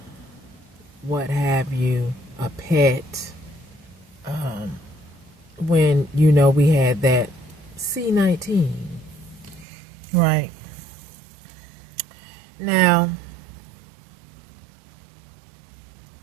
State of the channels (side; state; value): left; drops out; at 9.7 s